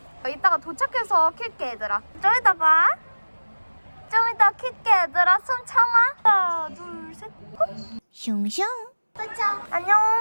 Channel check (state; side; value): inverted; both; correlation -1.00